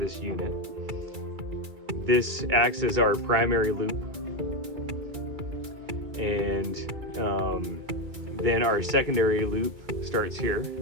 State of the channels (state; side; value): late; left; 2.3 ms